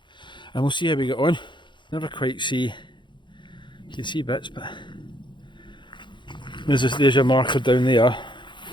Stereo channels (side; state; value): right; late; 0.23 ms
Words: And we'll see how we get on. Never quite see, you can see bits, but there's your marker down there